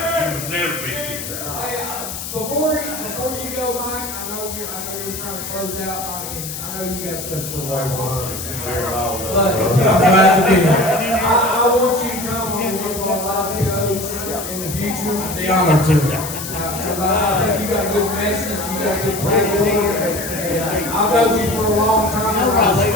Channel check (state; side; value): noise; left; hiss, 8 dB below the sound